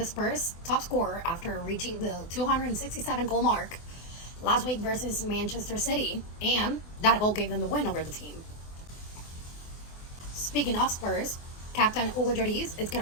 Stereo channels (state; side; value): late; right; 24 ms